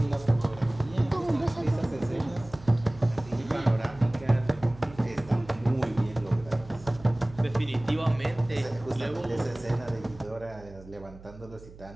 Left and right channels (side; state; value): right; noise; hum, 19 dB below the sound